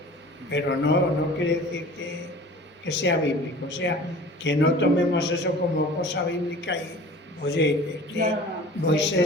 pero no quiere decir que sea bíblico, o sea, que no tomemos eso como cosa bíblica y, oye, es que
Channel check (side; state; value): both; normal; correlation 0.43